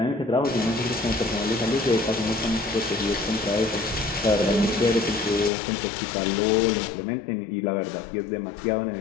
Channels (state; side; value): drops out; right; at 5.5 s